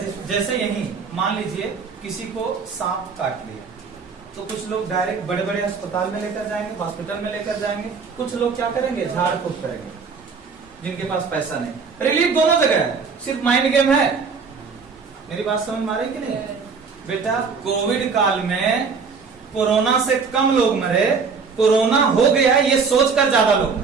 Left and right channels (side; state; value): left; quieter; 5.3 dB